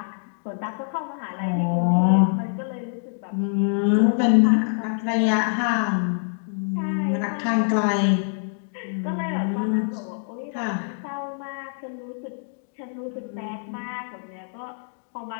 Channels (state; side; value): silent; right; digital silence